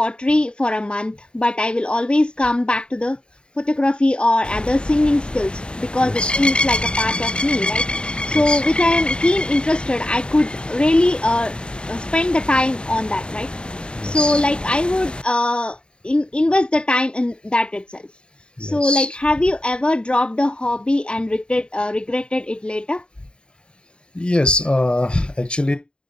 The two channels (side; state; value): right; late; 0.051 ms